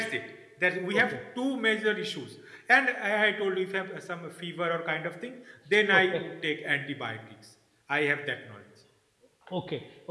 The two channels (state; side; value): identical; both; correlation 1.00